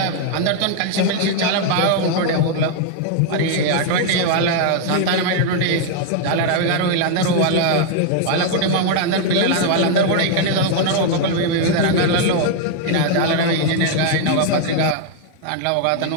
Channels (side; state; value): both; different; correlation 0.00